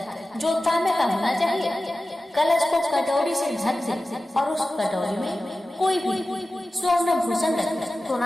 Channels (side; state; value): both; normal; correlation 0.95